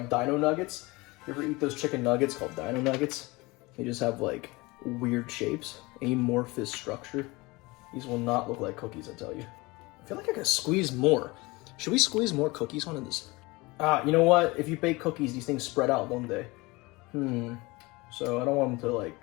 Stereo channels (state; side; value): quieter; right; 23.3 dB